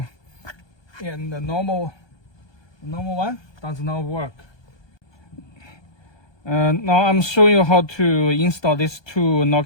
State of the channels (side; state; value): right; late; 1.2 ms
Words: and the normal one does not work. Now I'm showing you how to install these two